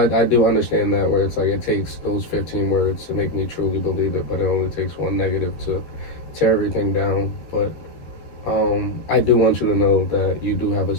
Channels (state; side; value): late; right; 13 ms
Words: do understand that where it's like it takes those 15 words to make me truly believe it, but it only takes one negative to tear everything down. But I do want you to know that you do have a